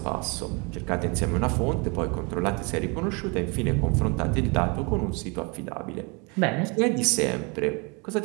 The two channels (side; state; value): left; quieter; 30.9 dB